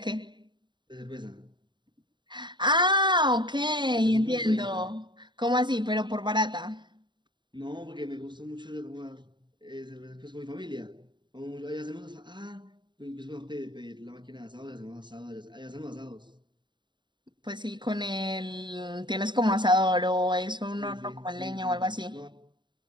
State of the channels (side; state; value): left; late; 0.22 ms